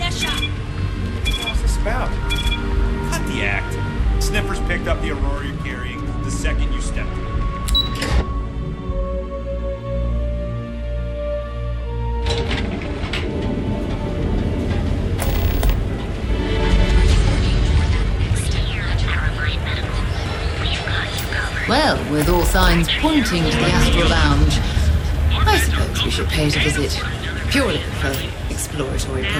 What's this about? Cut the act. Sniffers picked up the Aurora you're carrying the second you stepped in. Well, with all signs pointing to the Astral Lounge, I suppose we should pay it a visit. Purely for exploratory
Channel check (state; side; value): identical; both; correlation 1.00